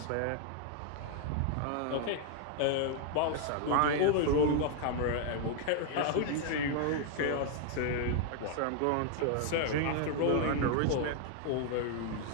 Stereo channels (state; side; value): different; both; correlation 0.00